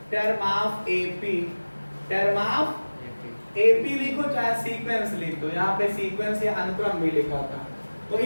term of AP. Term of AP लिखो चाहे सीक्वेंस लिख दो, यहाँ पे सीक्वेंस या अनुक्रम भी लिखा था, तो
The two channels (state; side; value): inverted; both; correlation -1.00